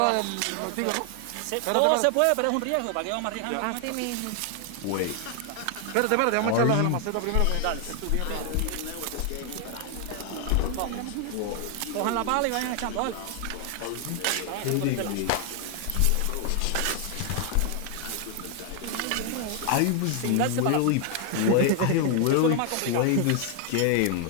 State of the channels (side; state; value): both; different; correlation 0.00